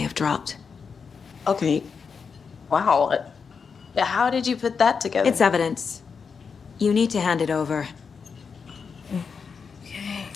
dropped. Okay. Wow. How did you put that together? It's evidence. You need to hand it over.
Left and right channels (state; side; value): quieter; right; 5.7 dB